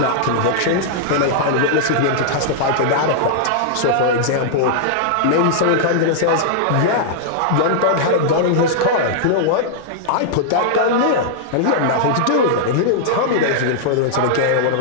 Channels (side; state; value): both; different; correlation -0.01